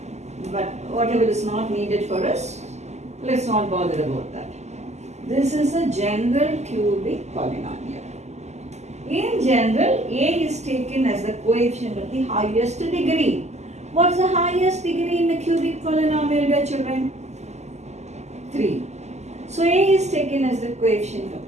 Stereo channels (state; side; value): late; left; 0.33 ms